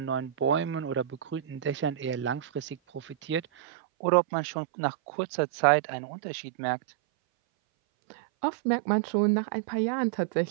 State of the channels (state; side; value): drops out; left; at 3.5 s